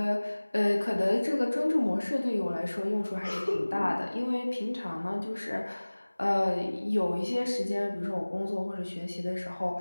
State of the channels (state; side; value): inverted; both; correlation -1.00